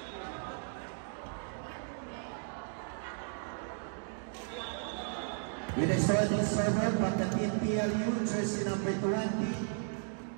With a starting server from the team PLU, jersey number 20,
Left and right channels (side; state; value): left; silent; 54 dB below the other